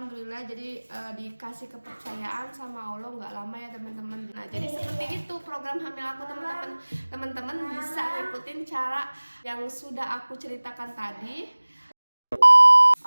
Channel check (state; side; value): inverted; both; correlation -1.00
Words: jadi dikasih kepercayaan sama Allah nggak lama ya, teman-teman. Nah, jadi seperti itu program hamil aku, teman-teman. Teman-teman bisa ikutin cara yang sudah aku ceritakan tadi.